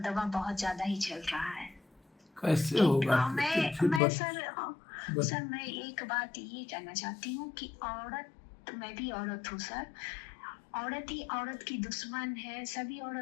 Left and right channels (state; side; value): drops out; right; at 4.0 s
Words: बहुत ज्यादा ही चल रहा है। कैसे होगा? मैं सर मैं एक बात ये कहना चाहती हूँ कि औरत, मैं भी औरत हूँ सर, औरत ही औरत की दुश्मन है। सभी